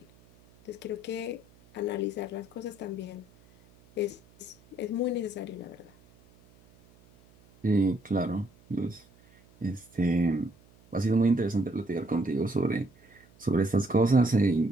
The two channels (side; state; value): right; noise; hum, 28 dB below the sound